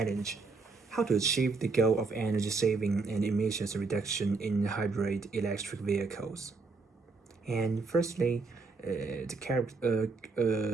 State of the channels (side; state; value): left; quieter; 4.2 dB